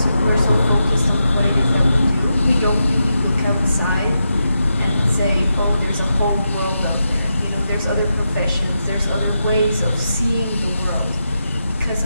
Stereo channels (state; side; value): inverted; both; correlation -0.86